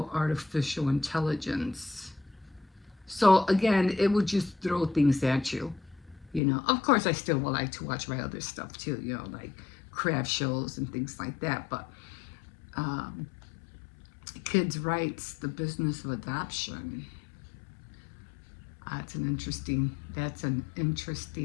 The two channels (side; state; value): right; drops out; at 6.4 s